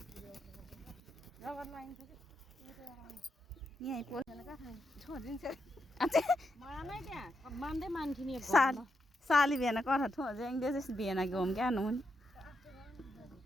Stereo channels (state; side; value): normal; both; correlation 0.83